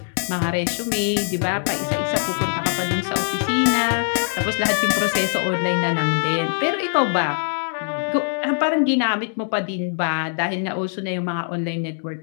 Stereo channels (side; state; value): right; silent; digital silence